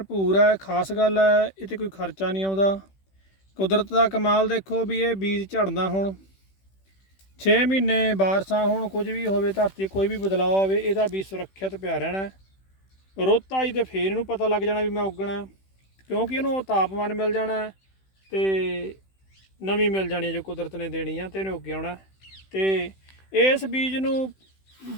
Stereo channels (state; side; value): late; right; 16 ms